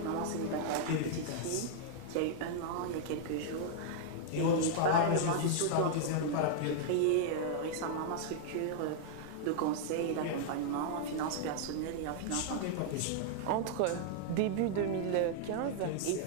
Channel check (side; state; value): both; different; correlation -0.01